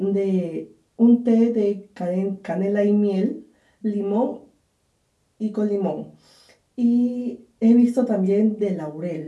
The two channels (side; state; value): both; identical; correlation 1.00